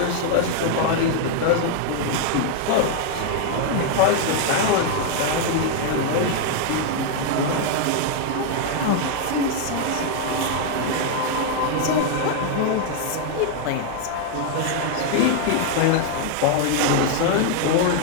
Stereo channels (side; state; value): both; different; correlation 0.00